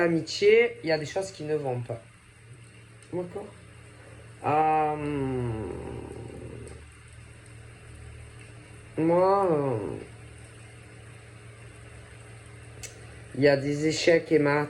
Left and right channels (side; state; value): both; identical; correlation 1.00